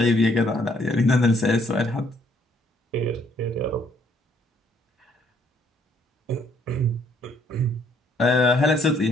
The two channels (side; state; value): both; normal; correlation 0.66